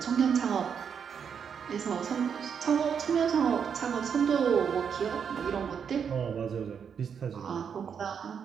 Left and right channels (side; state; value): left; quieter; 7.2 dB